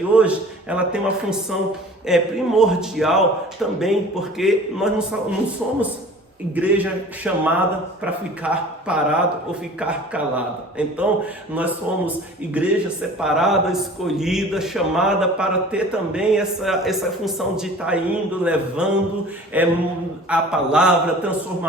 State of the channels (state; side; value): normal; both; correlation 0.44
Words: hoje ela tem uma função primordial também, porque nós não somos igreja chamada para ficar parado ou ficar calado. Então, nós somos igreja separada, escolhida, chamada para ter também essa função de estar indo, levando a palavra, a